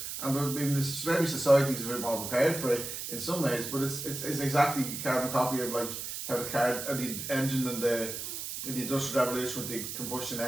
and I mean, maybe society's a bit more prepared for it in some ways, but it's exactly a carbon copy of like how the car and the engine and the industrial revolution with the combustion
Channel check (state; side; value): noise; right; hiss, 6 dB below the sound